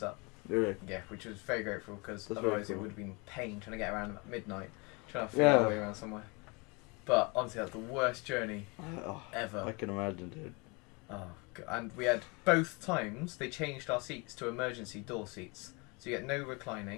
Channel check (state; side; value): quieter; right; 28.9 dB